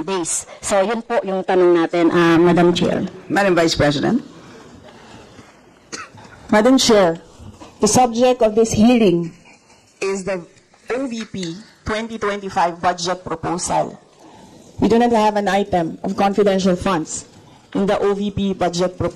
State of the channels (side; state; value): both; identical; correlation 1.00